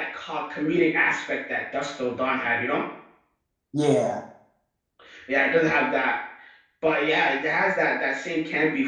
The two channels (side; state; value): both; identical; correlation 1.00